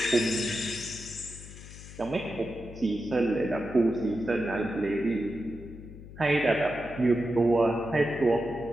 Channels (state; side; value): noise; left; hum, 15 dB below the sound